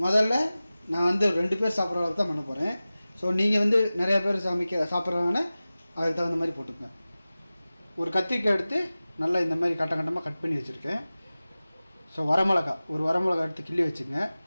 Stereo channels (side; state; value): both; inverted; correlation -0.97